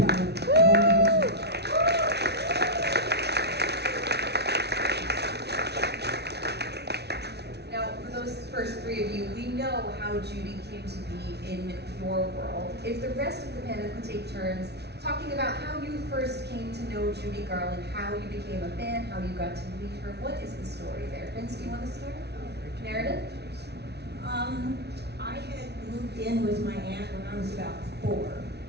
of all of her children. First three of you, we know how Judy came to be in your world. If the rest of the panel could take turns talking about how you first came to know Judy Garland, how you became a fan, how you got to meet her, what is the story there? Vince, do you want to start? Meredith? I had moved in with my aunt when I was about 4,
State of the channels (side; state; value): left; late; 0.49 ms